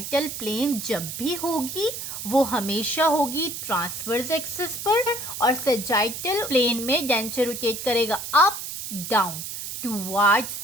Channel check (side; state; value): right; noise; hiss, 7 dB below the sound